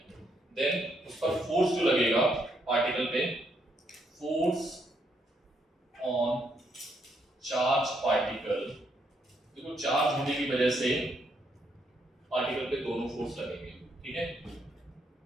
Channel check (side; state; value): both; normal; correlation 0.75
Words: देन उस पर फोर्स जो लगेगा पार्टिकल पे, फोर्स ऑन चार्ज पार्टिकल, देखो चार्ज होने की वजह से पार्टिकल पे दोनों फोर्स लगेंगे, ठीक है?